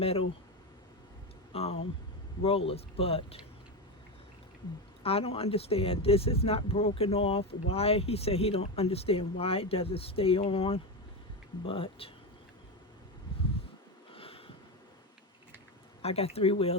rollers. But I don't understand. This is not broken off. Why? He said he don't understand why it doesn't stay on. But I got 3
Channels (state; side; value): normal; both; correlation 0.15